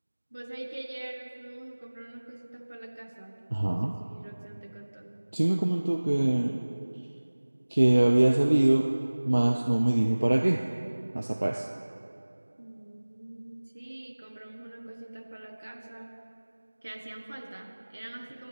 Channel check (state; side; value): inverted; both; correlation -1.00